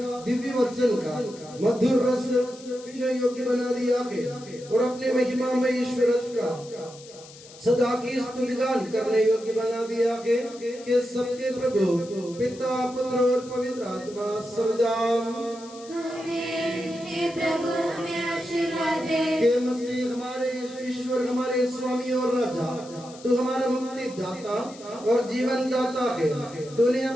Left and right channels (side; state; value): left; noise; hiss, 20 dB below the sound